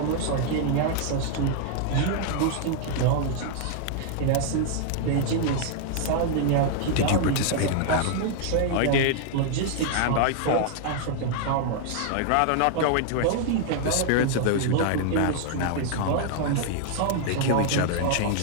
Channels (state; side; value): different; both; correlation -0.01